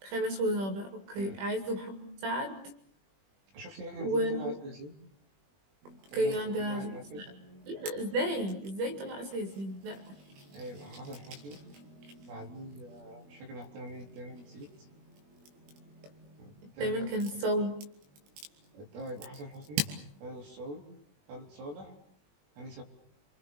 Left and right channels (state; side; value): late; left; 21 ms